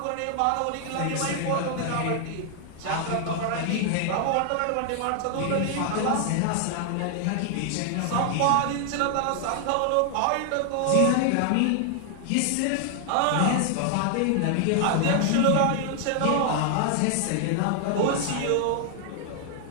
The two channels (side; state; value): both; different; correlation 0.00